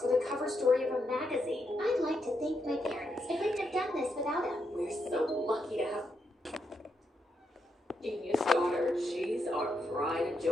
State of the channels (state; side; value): normal; both; correlation 0.81